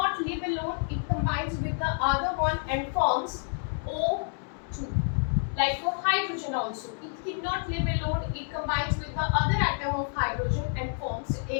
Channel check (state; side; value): silent; right; 57 dB below the other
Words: live alone. It combines with the other one and forms O2. Like for hydrogen also, it cannot live alone. It combines with the other atom of hydrogen and forms